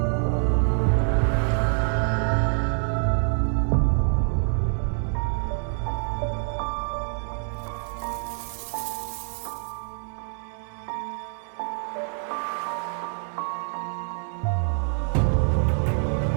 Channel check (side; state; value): left; silent; 61 dB below the other